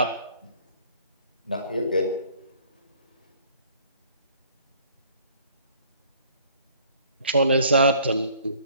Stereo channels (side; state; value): both; inverted; correlation -0.56